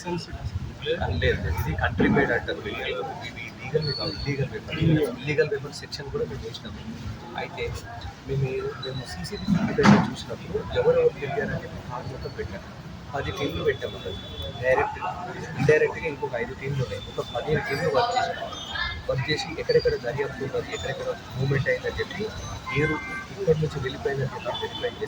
లేదు, ఇది కంట్రీ మేడ్ అంటారు. ఇవి లీగల్ కాదు, ఇల్లీగల్ వెపన్ సెక్షన్ కూడా మేము వేసినాము. అయితే మేము సీసీటీవీ ఫుటేజ్ చూసినప్పుడు ఎవరెవరు తెలియాలని చెప్పి కార్ మొత్తం పెట్టాము. 10 టీంలు పెట్టాము. డైరెక్ట్ ఇండైరెక్ట్గా ఇంకొక 5 టీంలు ఉన్నాయి. ఒక 15 టీంలు వర్క్ చేసి ఎక్కడెక్కడ దర్యాప్తు ఉన్నది, ఎక్కడెక్కడ మూవ్మెంట్ అయిందని చెప్పి మీరు ఇక్కడి నుంచి వెళ్ళిపోయిందని చెప్పి వెరిఫై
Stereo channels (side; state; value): both; identical; correlation 1.00